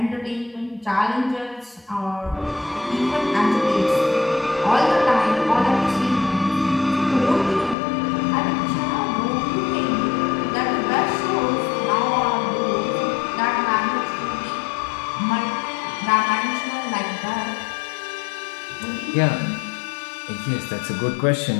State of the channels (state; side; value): drops out; right; at 7.8 s